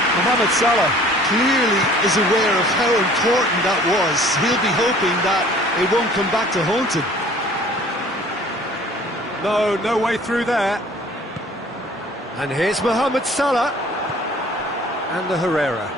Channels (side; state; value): both; normal; correlation 0.51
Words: Mohamed Salah clearly is aware of how important that was. He'll be hoping that it won't come back to haunt him. No way through there. And here's Mohamed Salah. And the Herrera.